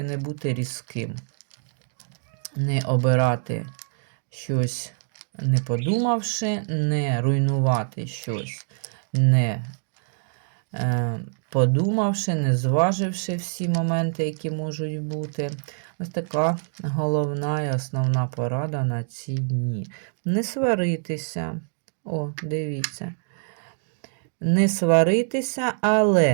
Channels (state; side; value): silent; left; digital silence